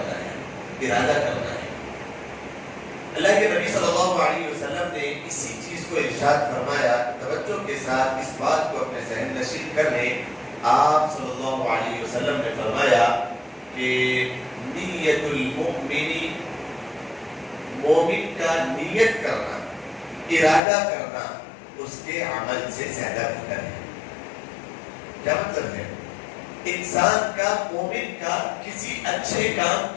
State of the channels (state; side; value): drops out; right; at 20.6 s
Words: ہے، ارادہ کرنا ہے. اللہ کے نبی صلی اللہ علیہ وسلم نے اسی چیز کو ارشاد فرمایا. توجہ کے ساتھ اس بات کو اپنے ذہن نشین کر لیں. آپ صلی اللہ علیہ وسلم نے فرمایا کہ نیت المؤمن، مومن کا نیت کرنا، ارادہ کرنا اس کے عمل سے زیادہ بہتر ہے. کیا مطلب ہے؟ انسان کا، مومن کا کسی اچھے کام